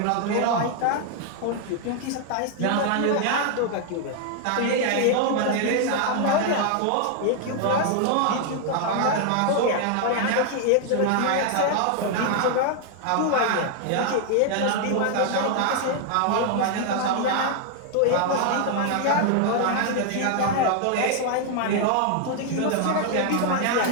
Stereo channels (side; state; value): both; different; correlation 0.00